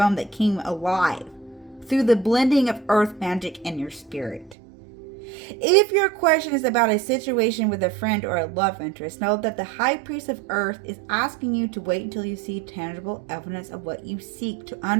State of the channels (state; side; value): drops out; left; at 4.5 s